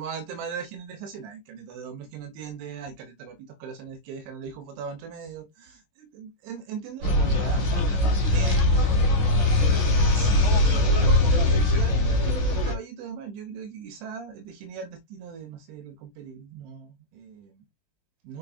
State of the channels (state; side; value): late; left; 20 ms